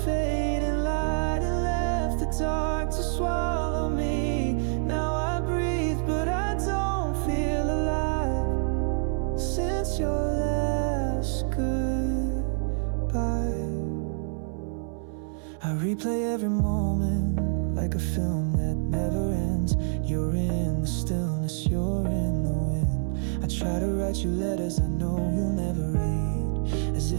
fading light and left the dark to swallow me. Now I breathe, but I don't feel alive since your last goodbye. I replay every moment like a film that never ends. You're in the stillness, you're in the wind. I try to write you letters I know you'll never read, as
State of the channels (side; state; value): left; silent; 60 dB below the other